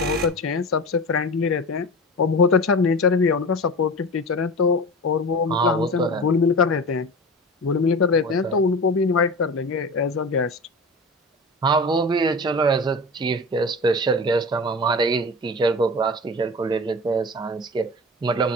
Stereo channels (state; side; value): normal; both; correlation 0.31